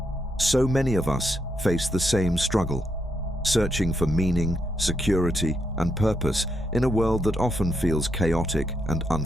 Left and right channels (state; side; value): normal; both; correlation 0.79